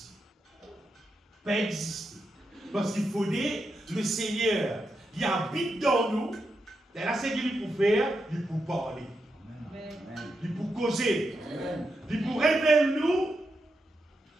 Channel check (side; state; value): both; normal; correlation 0.86